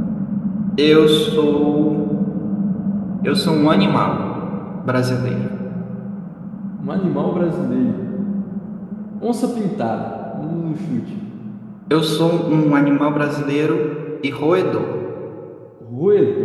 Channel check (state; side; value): identical; both; correlation 1.00